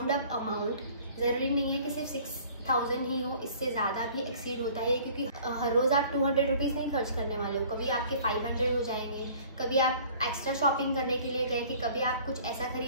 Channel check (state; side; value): inverted; both; correlation -0.51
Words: अप अमाउंट, जरूरी नहीं है कि सिर्फ 6000 ही हो, इससे ज्यादा भी एक्सीड होता है क्योंकि हर रोज आप 200 रुपीज नहीं खर्च करने वाले हो। कभी आपके 500 हो जाएंगे, कभी आप एक्स्ट्रा शॉपिंग करने के लिए गए, कि कभी आप कुछ ऐसा